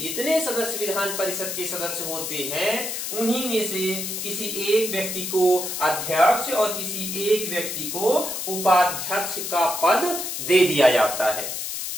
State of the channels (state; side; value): noise; left; hiss, 4 dB below the sound